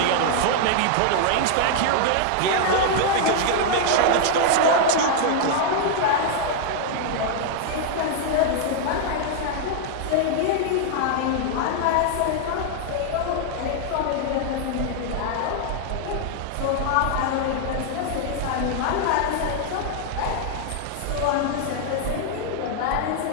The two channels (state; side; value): different; both; correlation 0.00